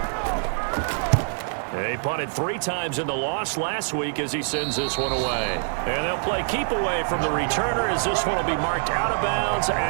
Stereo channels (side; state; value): left; silent; digital silence